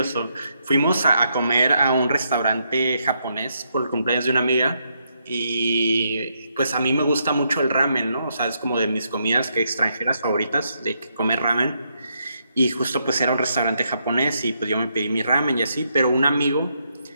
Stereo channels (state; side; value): inverted; both; correlation -0.78